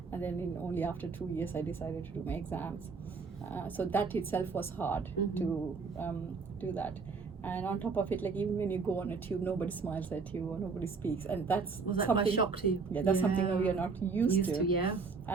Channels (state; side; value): quieter; left; 4.8 dB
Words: and then only after 2 years I decided to do my exams. So that itself was hard to do that. And on top of it, like even when you go on a tube, nobody smiles at you or nobody speaks, and that's was that something. quite a shock to you? Yeah, that's something that we are not used to. Yeah.